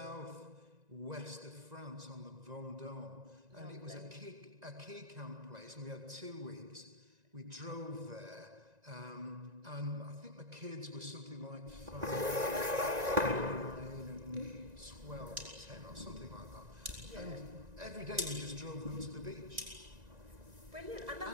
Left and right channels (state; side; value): late; left; 1.9 ms